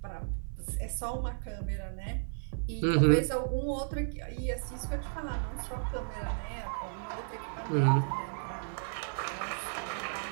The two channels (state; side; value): silent; left; 55 dB below the other